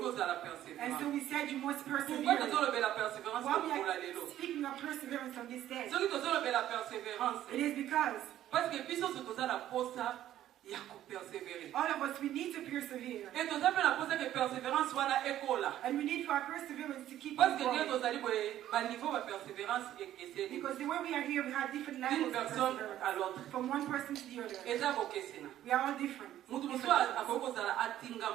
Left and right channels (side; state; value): left; quieter; 12.5 dB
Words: And so we said you must persevere. Why we are speaking of perseverance on this day? It is because all of us, we need to persevere. And we need for our perseverance to keep on going. Because the way we are here, we have different levels of perseverance. From one person to the other. We are all different.